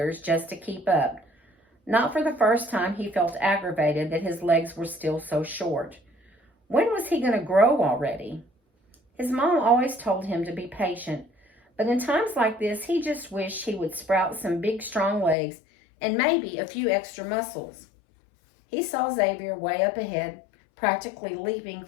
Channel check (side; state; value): right; drops out; at 15.4 s